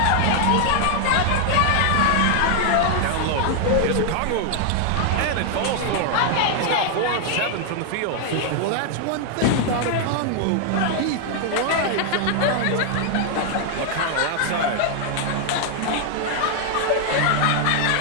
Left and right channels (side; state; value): both; different; correlation 0.00